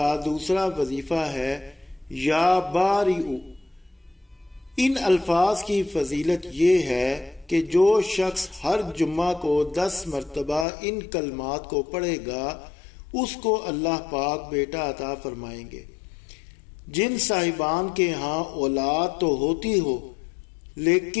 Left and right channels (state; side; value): drops out; right; at 10.7 s